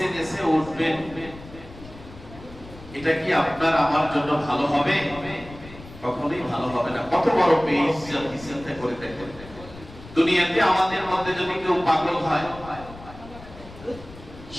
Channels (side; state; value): left; noise; rumble, 17 dB below the sound